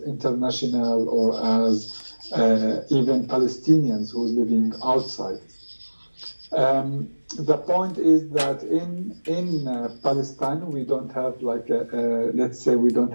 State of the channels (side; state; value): both; inverted; correlation -1.00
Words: international or as even Palestinians who's living outside. The point is that in Palestine we don't have like let's say we don't